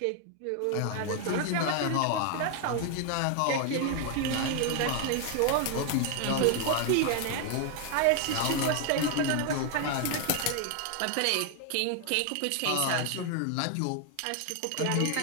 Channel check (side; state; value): both; different; correlation 0.00